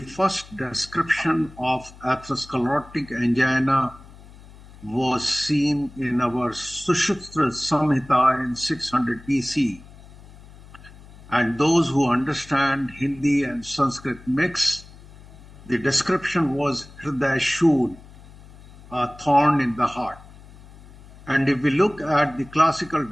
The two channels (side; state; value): left; noise; hum, 21 dB below the sound